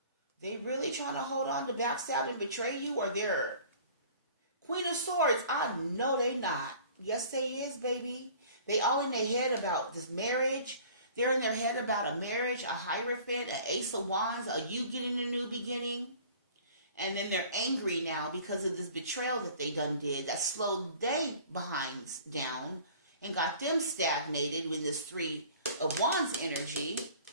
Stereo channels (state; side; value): inverted; both; correlation -0.48